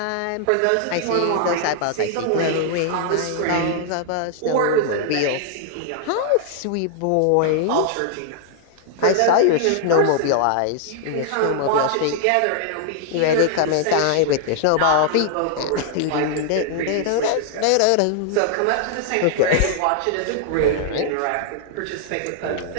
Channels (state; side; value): different; both; correlation -0.01